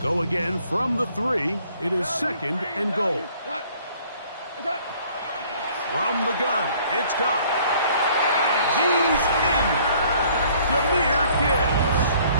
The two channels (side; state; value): both; inverted; correlation -0.58